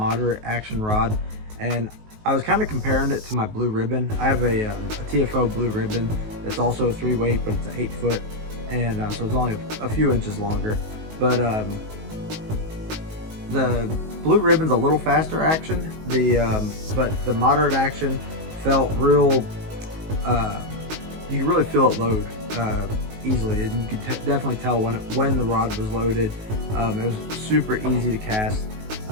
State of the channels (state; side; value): late; left; 19 ms